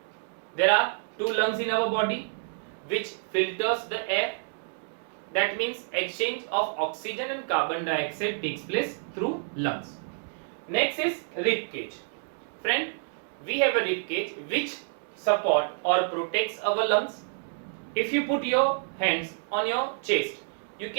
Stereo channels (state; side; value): silent; left; digital silence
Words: There are two lungs in our body which filters the air. That means exchange of oxygen and carbon dioxide takes place through lungs. Next is rib cage. Friend, we have a rib cage which support or protects our lungs. If you put your hands on your chest, you